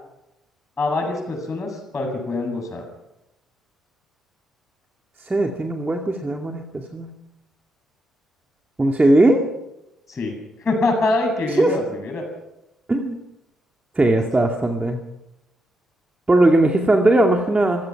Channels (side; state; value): both; normal; correlation 0.84